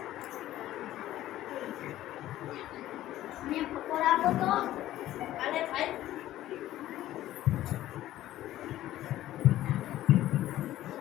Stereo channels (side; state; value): right; quieter; 14.1 dB